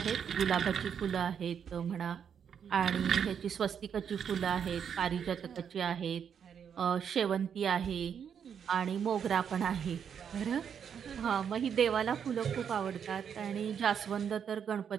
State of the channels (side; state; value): left; quieter; 7.8 dB